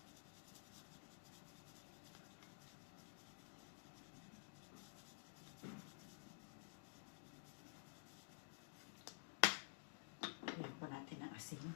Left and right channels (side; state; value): right; silent; digital silence